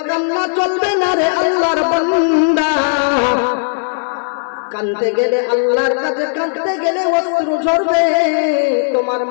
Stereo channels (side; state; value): right; silent; digital silence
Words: কান্না চলবে না রে আল্লাহর বান্দা। কাঁদতে গেলে আল্লাহর কাছে কাঁদতে গেলে অশ্রু ঝরবে, তোমার